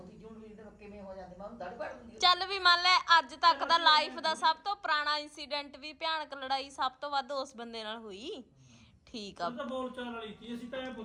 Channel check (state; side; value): identical; both; correlation 1.00